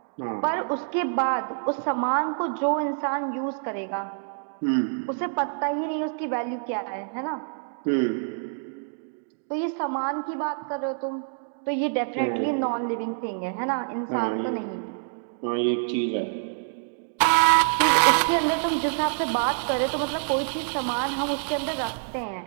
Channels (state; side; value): silent; left; digital silence